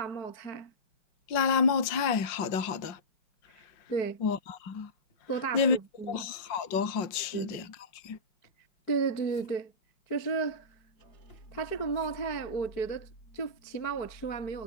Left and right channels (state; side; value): late; right; 5.5 ms